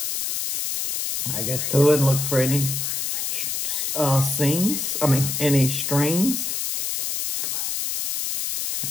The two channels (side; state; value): left; noise; hiss, 1 dB below the sound